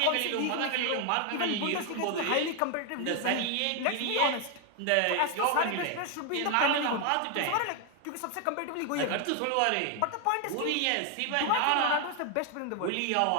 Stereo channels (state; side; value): different; both; correlation 0.01